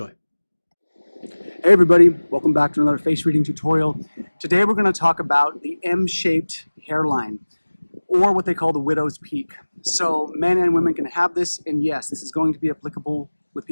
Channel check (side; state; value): both; inverted; correlation -1.00